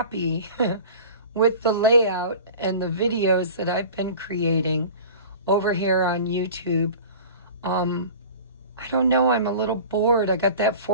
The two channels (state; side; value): inverted; both; correlation -0.39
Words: with the layout and the videos that I've been creating over here on YouTube. I don't know, I'm a little bored. I got that